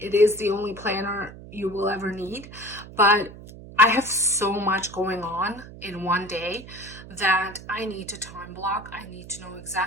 is the only planner you will ever need, but I have so much going on in one day that I need to time block. I need to know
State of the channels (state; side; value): noise; right; hum, 16 dB below the sound